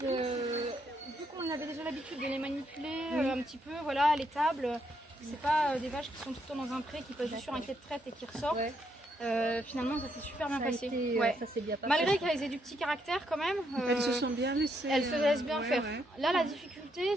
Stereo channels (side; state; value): both; normal; correlation 0.76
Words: qu'on avait déjà l'habitude de les manipuler un petit peu, voilà, à l'étable, c'est pas des vaches qui sont tout le temps dans un pré, qui passent juste sur un quai de traite et qui ressortent. Ouais. Finalement ça s'est super bien passé. Ça s'est bien passé. Malgré qu'elles aient du petit caractère quand même. Elles se sont bien laissées. Elles se laissent bien faire. Ouais. Là la difficulté